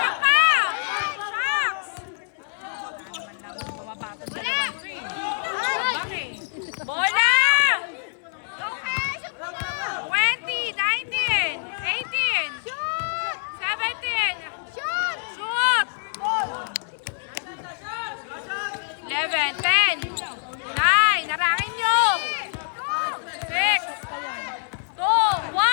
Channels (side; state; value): right; silent; 62 dB below the other